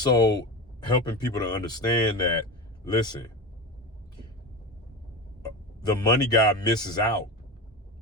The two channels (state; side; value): normal; both; correlation 0.24